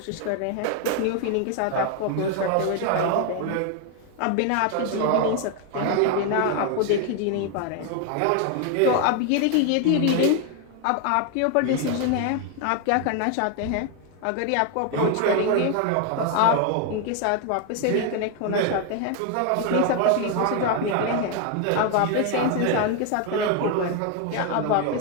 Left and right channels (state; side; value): different; both; correlation 0.01